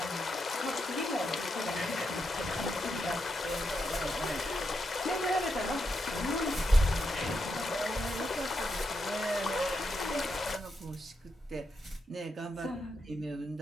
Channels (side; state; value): both; normal; correlation 0.83